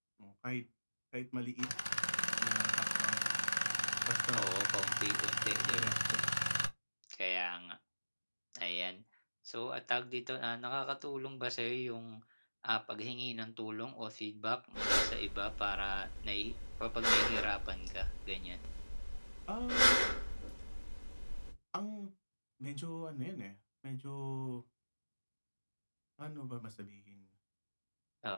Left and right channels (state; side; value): inverted; both; correlation -1.00